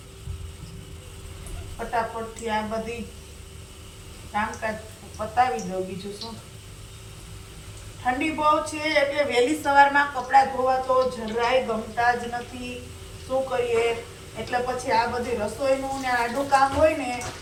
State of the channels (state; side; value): identical; both; correlation 1.00